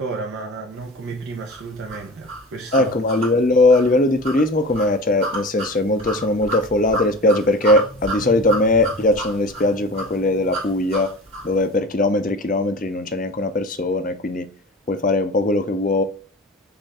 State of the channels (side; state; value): both; normal; correlation 0.36